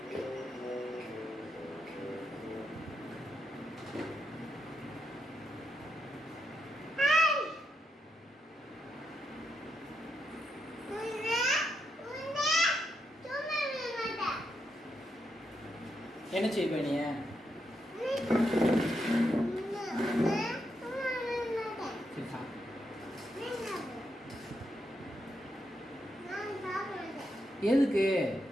என்ன செய்வ நீ? சரி சாப்பிடு. எதுக்கு?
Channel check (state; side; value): normal; both; correlation 0.82